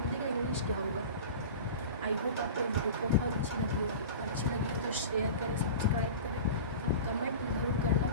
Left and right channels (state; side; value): inverted; both; correlation -0.34